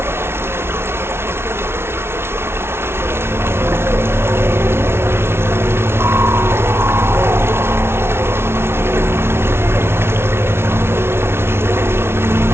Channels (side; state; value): left; late; 0.12 ms